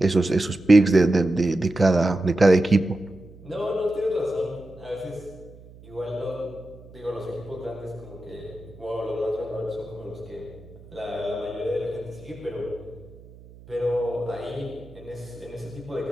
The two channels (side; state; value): right; noise; hum, 21 dB below the sound